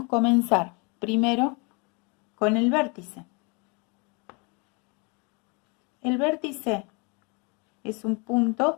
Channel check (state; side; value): quieter; right; 31.7 dB